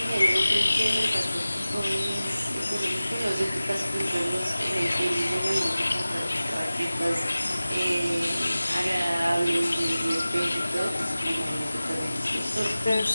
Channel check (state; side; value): inverted; both; correlation -0.97